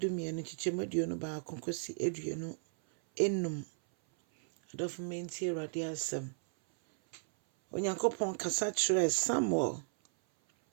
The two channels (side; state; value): left; silent; 55 dB below the other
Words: chichemeduonu ba konkosi eduonu enum. Odofo menti Awurade asem. Onyankopon kasa kyerɛ Samuel